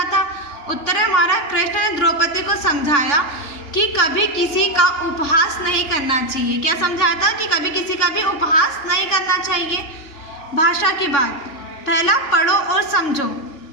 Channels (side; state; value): right; late; 3.5 ms